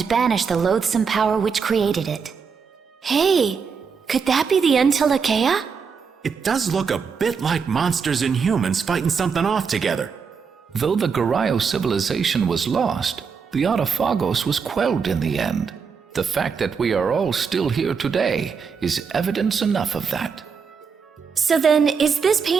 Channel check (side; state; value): left; quieter; 5.9 dB